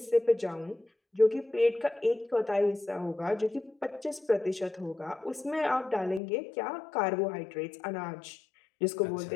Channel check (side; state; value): right; drops out; at 6.2 s